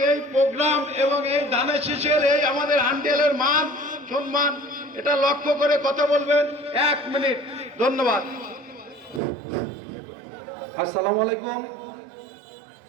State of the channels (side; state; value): left; drops out; at 9.2 s